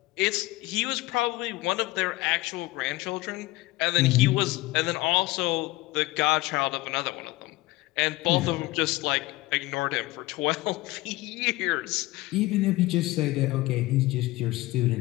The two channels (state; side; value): quieter; right; 19.8 dB